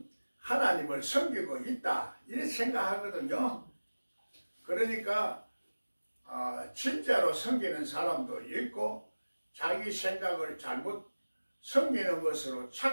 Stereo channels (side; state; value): both; inverted; correlation -1.00